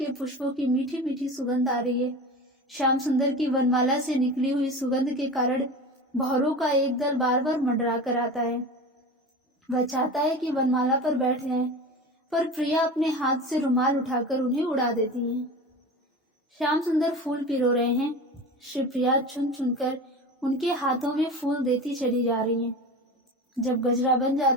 पुष्पों की मीठी मीठी सुगंध आ रही है। श्याम सुंदर की वनमाला से निकली हुई सुगंध के कारण भौरों का एक दल बार बार मंडरा कर आता है। वह चाहता है कि वनमाला पर बैठ जाए, पर प्रिया अपने हाथ से रुमाल उठाकर उन्हें उड़ा देती हैं। श्याम सुंदर फूल पिरो रहे हैं। श्री प्रिया चुन चुनकर उनके हाथों में फूल देती चली जा रही हैं। जब गजरा बन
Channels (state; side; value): normal; both; correlation 0.31